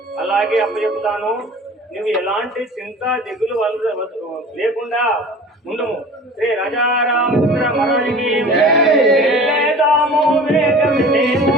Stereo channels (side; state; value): both; normal; correlation 0.41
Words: అలాగే అప్పచెప్తాను. నువ్వు ఎలాంటి చింత దిగులు లేకుండా ఉండము. శ్రీ రాజారామచంద్ర మహారాజుకి వెళ్ళేదాము వేగమినేము,